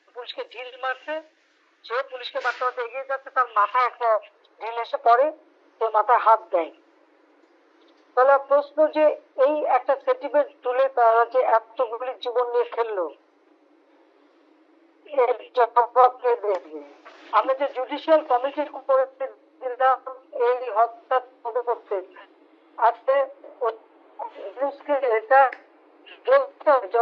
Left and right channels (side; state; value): both; identical; correlation 1.00